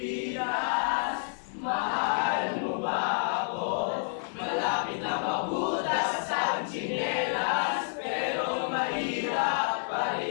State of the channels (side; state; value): right; silent; 58 dB below the other